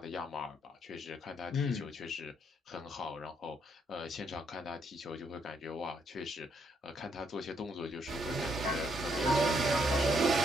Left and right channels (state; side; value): normal; both; correlation 0.74